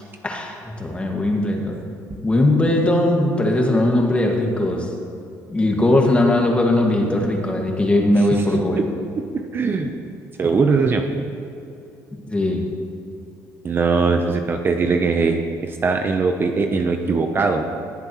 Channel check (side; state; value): both; normal; correlation 0.76